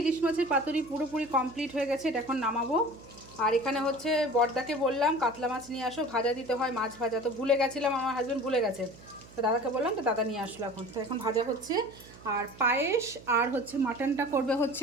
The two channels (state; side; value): noise; right; hum, 21 dB below the sound